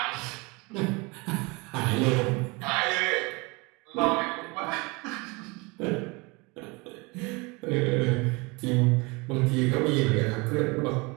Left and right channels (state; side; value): quieter; left; 26.8 dB